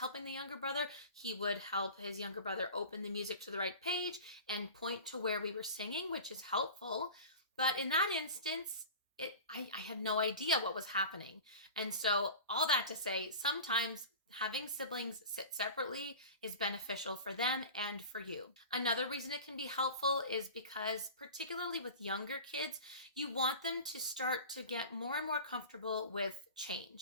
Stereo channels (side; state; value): both; inverted; correlation -0.35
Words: the younger brother. He would help his younger brother open the music to the right page and point to where we were singing, which is helpful. But in that instance, I had no idea what was happening. And so all that to say, sometimes having siblings sit separately is beneficial for them and for you. Another reason it can be helpful is because, particularly with younger kids, you want them to start to get more and more comfortable with